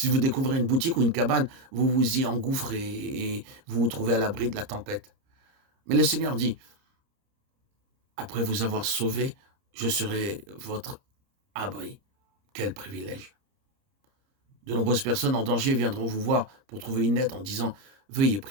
vous découvrez une boutique ou une cabane, vous vous y engouffrez et vous vous trouvez à l'abri de la tempête. Mais le Seigneur dit, après vous avoir sauvé, je serai votre abri. Quel privilège! De nombreuses personnes en danger viendront vous voir pour trouver une aide en disant « Veuillez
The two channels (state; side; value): late; left; 30 ms